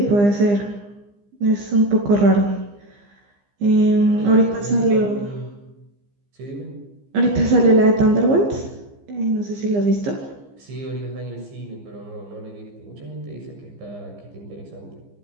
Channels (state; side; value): late; left; 15 ms